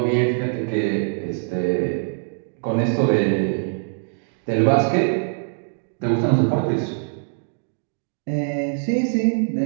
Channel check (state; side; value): silent; left; digital silence